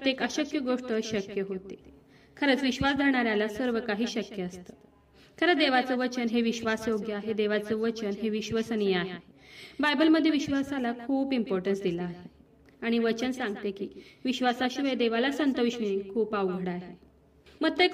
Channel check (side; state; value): both; identical; correlation 1.00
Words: अशक्य गोष्ट शक्य होते. खरंच विश्वास धरणाऱ्याला सर्व काही शक्य असतं. खरं देवाचं वचन हे विश्वासयोग्य आहे. देवाचं वचन हे विश्वसनीय आहे. बायबलमध्ये विश्वासाला खूप इम्पॉर्टन्स दिला आहे आणि वचन सांगते की विश्वासाशिवाय देवाला संतविष्णे खूप अवघड आहे.